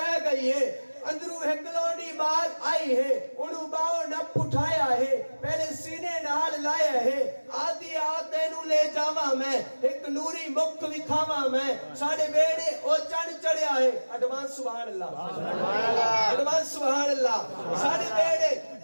گئی ہے اندرو ہکلونی بات آئی ہے انہوں باؤں نپ اٹھایا ہے پہلے سینے نال لایا ہے آدھی آتے نو لے جاواں میں ایک نوری مکھ وکھاواں میں ساڑھے بیڑے او چن چڑھیا ہے ایڈوانس سبحان اللہ ایڈوانس سبحان اللہ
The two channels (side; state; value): both; inverted; correlation -1.00